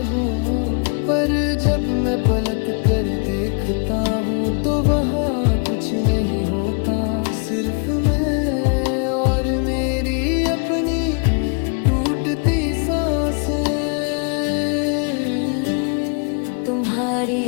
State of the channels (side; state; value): right; quieter; 38.3 dB